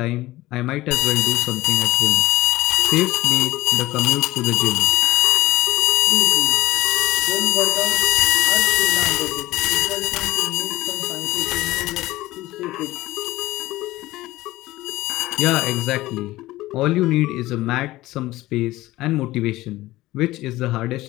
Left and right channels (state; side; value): quieter; right; 17.6 dB